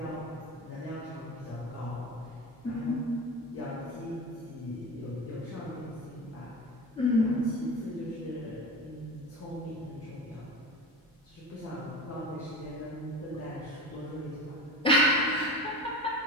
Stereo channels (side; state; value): both; normal; correlation 0.30